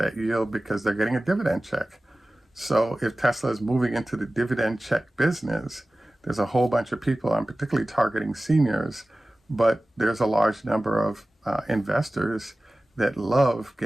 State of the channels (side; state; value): both; normal; correlation 0.97